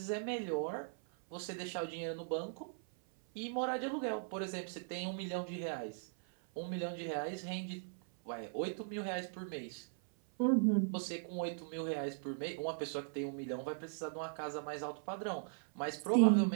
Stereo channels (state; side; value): silent; left; 52 dB below the other